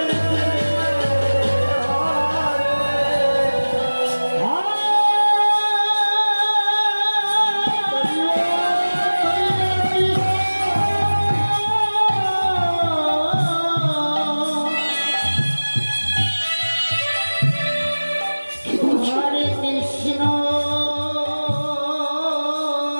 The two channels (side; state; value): both; inverted; correlation -1.00